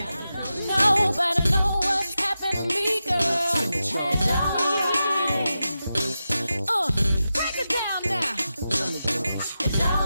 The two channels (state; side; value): inverted; both; correlation -0.91